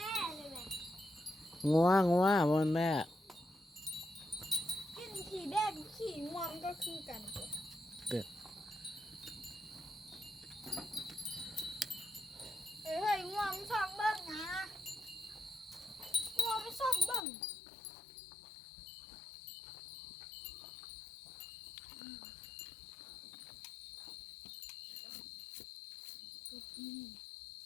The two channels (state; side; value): drops out; right; at 17.2 s